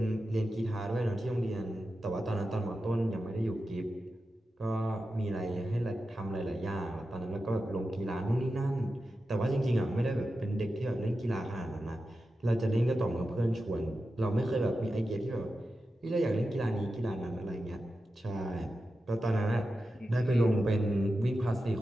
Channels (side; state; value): both; normal; correlation 0.91